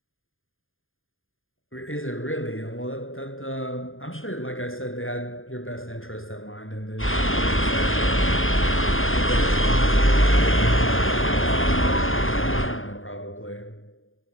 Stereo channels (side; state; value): right; late; 0.59 ms